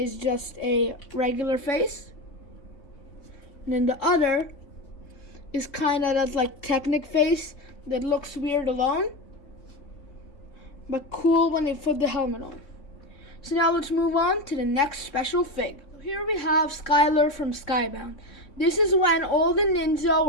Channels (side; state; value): right; late; 3.7 ms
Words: just a regular face, and then the other is kind of that like Technic face that looks weird alone, but cool when they put the helmet on. So now let's move on to the next special fig. Here we have Skylar from Skybound. This is when all the ninja